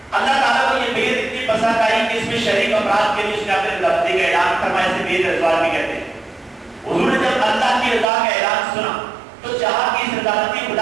اللہ تعالیٰ کو یہ بیعت اتنی پسند آئی کہ اس میں شریک افراد کے لیے اس نے اپنے لفظی کا اعلان فرمایا، اسے بیعت رضوان بھی کہتے ہیں. حضور نے جب اللہ کی رضا کا اعلان سنا تو چاہا کہ اس رضامندی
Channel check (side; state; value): left; drops out; at 8.1 s